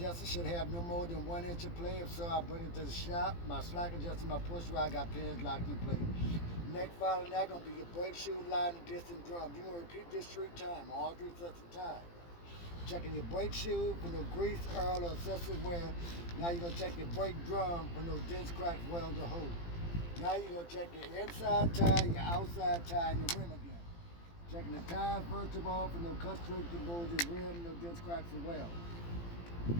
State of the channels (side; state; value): right; late; 18 ms